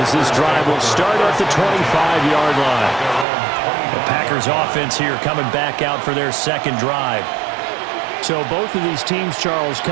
this drive will start at the 25-yard line. The Packers offense here coming back out for their second drive. So both of these teams, Charles,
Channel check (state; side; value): drops out; left; at 3.2 s